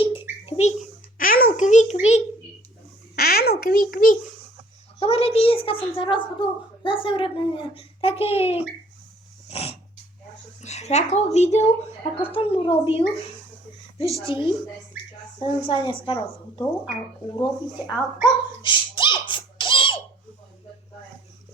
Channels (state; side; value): normal; both; correlation 0.57